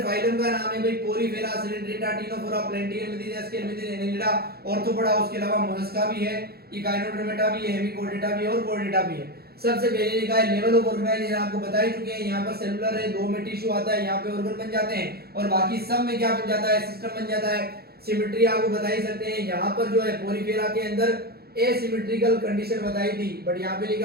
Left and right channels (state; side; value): late; left; 0.46 ms